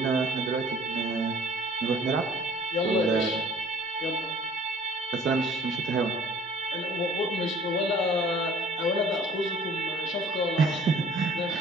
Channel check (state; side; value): normal; both; correlation 0.51